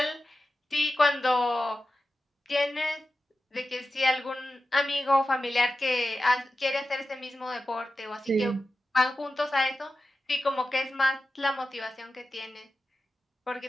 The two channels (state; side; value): normal; both; correlation 0.93